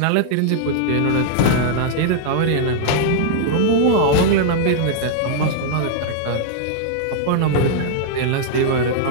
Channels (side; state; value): both; different; correlation -0.01